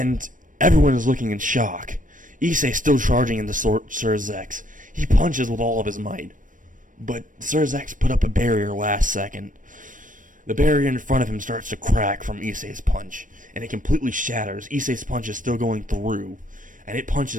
everyone is looking in shock. Issei still charging into Sir Zex. He punches with all of his might, but Sir Zex put up a barrier last second. The barrier in front of him starts to crack from Issei's punch, and it completely shatters. Issei's punch is still going through, and it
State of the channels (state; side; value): late; left; 0.38 ms